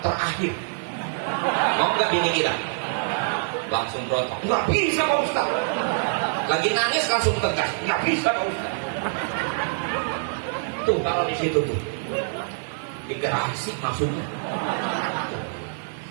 terakhir. Mau nggak bini kita? Langsung berontak, nggak bisa Pak Ustaz. Lagi nangis langsung tegas, nggak bisa Pak Ustaz. Tuh kalau di situ tuh digerasi maksudnya.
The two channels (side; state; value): left; silent; digital silence